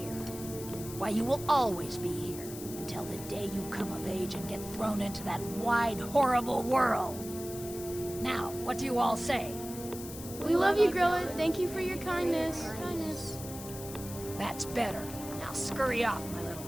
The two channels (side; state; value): left; noise; hiss, 12 dB below the sound